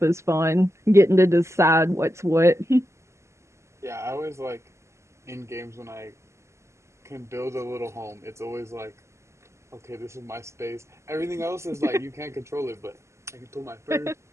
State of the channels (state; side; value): late; left; 0.13 ms